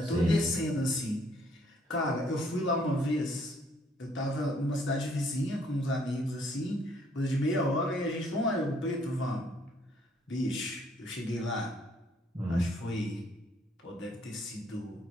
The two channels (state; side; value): normal; both; correlation 0.65